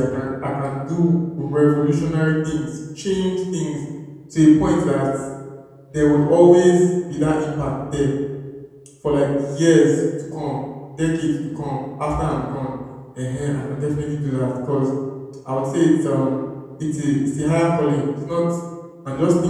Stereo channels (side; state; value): both; identical; correlation 1.00